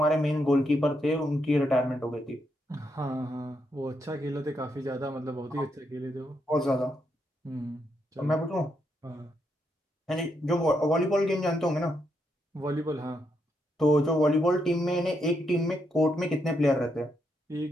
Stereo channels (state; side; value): normal; both; correlation 0.80